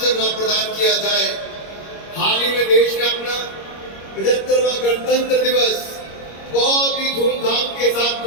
न प्रदान किया जाए। हाल ही में देश ने अपना 75वां गणतंत्र दिवस बहुत ही धूमधाम के साथ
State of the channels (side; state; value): right; late; 25 ms